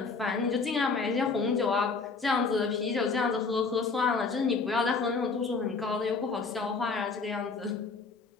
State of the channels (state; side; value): quieter; right; 4.5 dB